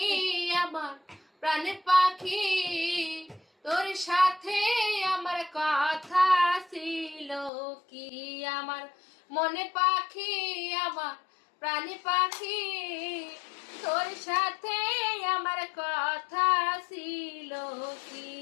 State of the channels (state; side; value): drops out; right; at 7.5 s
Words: আমার প্রাণের পাখি, তোর সাথে আমার কথা ছিল কি। আমার মনে পাখি, আমার প্রাণী পাখি, তোর সাথে আমার কথা ছিল কি।